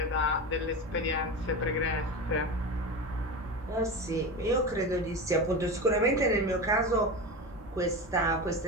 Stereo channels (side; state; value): both; normal; correlation 0.24